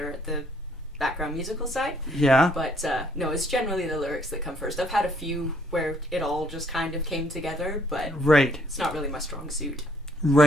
at the background musical side. Yeah. But no, it's generally the lyrics that come first. I've had a few where it all just kind of came together, but right. It's not really my strong suit.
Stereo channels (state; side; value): normal; both; correlation 0.66